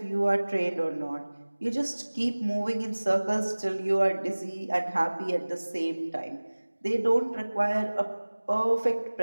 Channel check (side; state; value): both; inverted; correlation -1.00